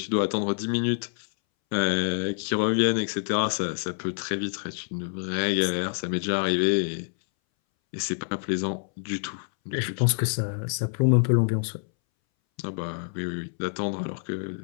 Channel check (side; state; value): right; silent; 60 dB below the other